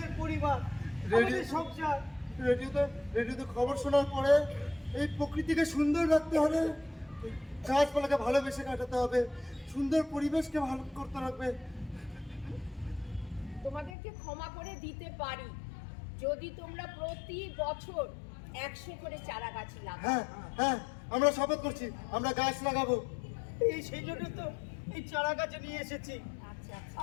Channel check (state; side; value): drops out; right; at 14.0 s